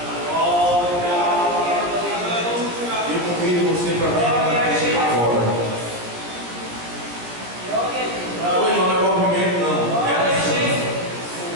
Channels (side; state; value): left; late; 17 ms